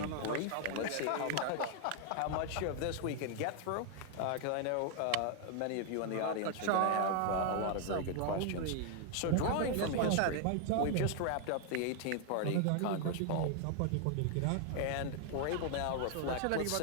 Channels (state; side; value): different; both; correlation 0.00